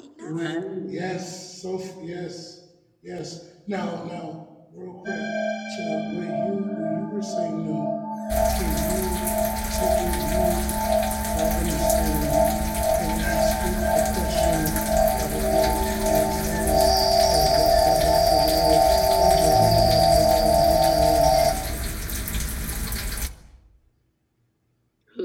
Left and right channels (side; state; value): both; identical; correlation 1.00